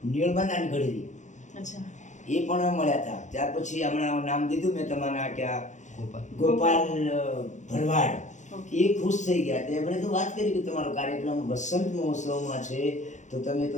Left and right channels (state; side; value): late; right; 0.35 ms